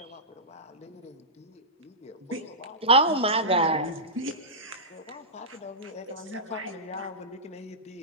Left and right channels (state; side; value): normal; both; correlation -0.16